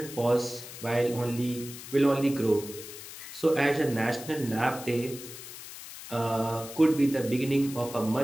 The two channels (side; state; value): left; noise; hiss, 13 dB below the sound